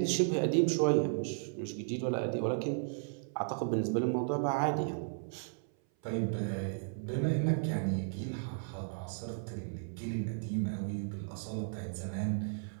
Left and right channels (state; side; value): silent; left; 55 dB below the other